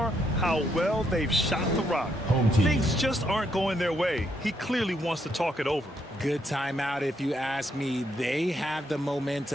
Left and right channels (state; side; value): normal; both; correlation 0.76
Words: how well they've shot the rock. Things just aren't going their way. He clearly wants to talk it over. Good timeout if you ask me. They have the